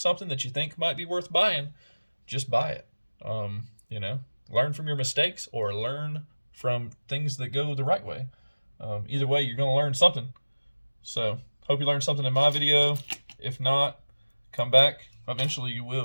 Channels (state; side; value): inverted; both; correlation -1.00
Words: that you think might be worth buying, just buy it. You know, learn from your mistakes or learn from things that go the right way. Either way, you're going to learn something. So, hope you learned something in my video. If not, come back. Eventually you